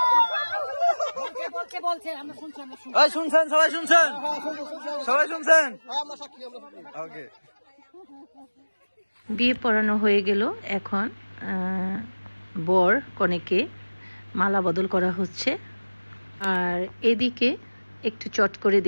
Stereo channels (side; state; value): both; inverted; correlation -1.00